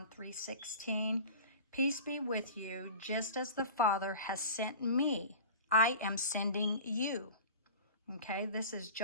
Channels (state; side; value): inverted; both; correlation -0.38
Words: 3:16. Peace be with you, just as the Father has sent me, I am sending you. Okay, this is